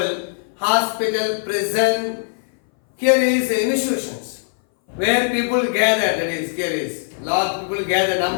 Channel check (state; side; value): silent; right; 60 dB below the other